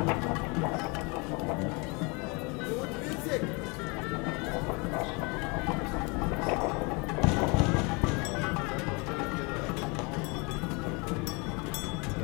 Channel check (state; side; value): quieter; right; 29.5 dB